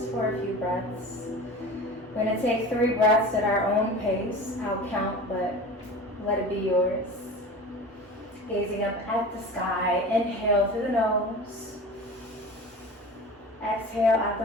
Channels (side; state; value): both; normal; correlation 0.35